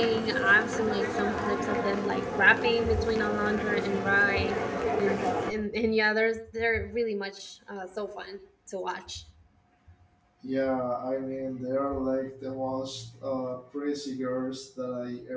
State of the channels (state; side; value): identical; both; correlation 1.00